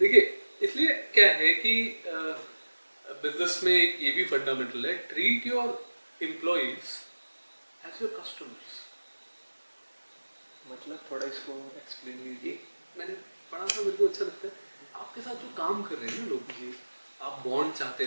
इसलिए क्या है कि बिजनेस में एक ये भी फंडामेंटल है, treat your employees as your customers. मतलब थोड़ा इसको एक्सप्लेन कीजिए। मैंने पढ़ा था, मेरे को अच्छा लगता है, आपके साथ जो काम कर रहे हैं ना लोग, जी आप बॉन्ड चाहते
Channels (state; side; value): inverted; both; correlation -1.00